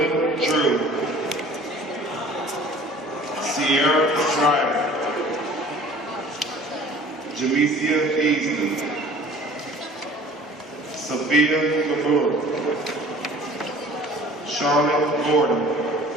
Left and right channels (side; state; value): both; normal; correlation 0.47